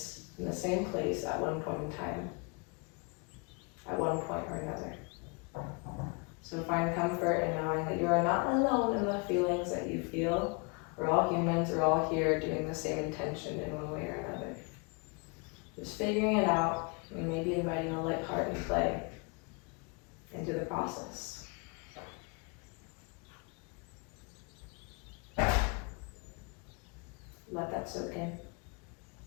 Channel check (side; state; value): right; quieter; 32.6 dB